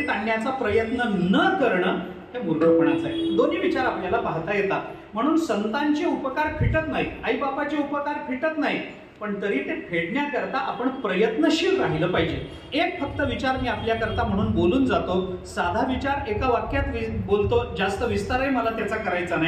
आणण्याचा प्रयत्न न करणं हे मूर्खपणाचं आहे. दोन्ही विचार आपल्याला पाहता येतात. म्हणून संतांचे उपकार फिटत नाहीत, आई बापाचे उपकार फिटत नाहीत, पण तरी ते फेडण्याकरता आपण प्रयत्नशील राहिलं पाहिजे. एक फक्त विचार मी आपल्याकरता म्हणून बोलून जातो, साधा विचार एका वाक्यात बोलतो, जास्त विस्तारही मला त्याचा करायचा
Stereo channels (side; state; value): both; identical; correlation 1.00